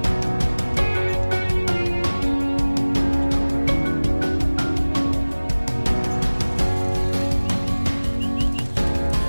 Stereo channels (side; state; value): both; inverted; correlation -1.00